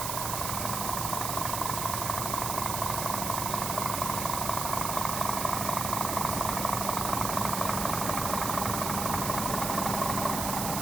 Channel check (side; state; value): right; noise; hiss, 2 dB below the sound